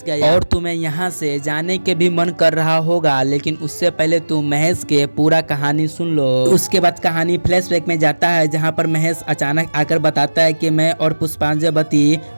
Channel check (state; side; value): inverted; both; correlation -1.00